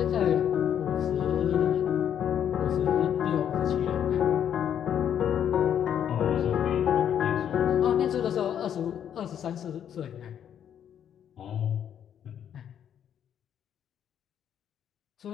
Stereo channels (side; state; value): right; quieter; 9.3 dB